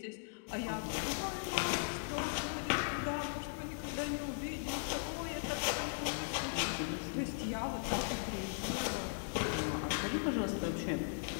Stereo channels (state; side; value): silent; right; digital silence